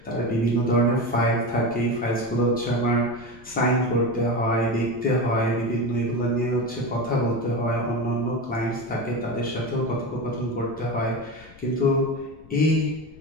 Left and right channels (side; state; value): left; noise; rumble, 22 dB below the sound